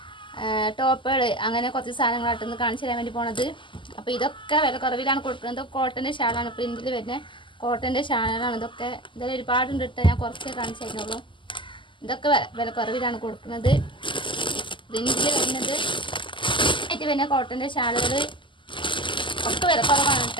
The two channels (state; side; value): late; right; 0.24 ms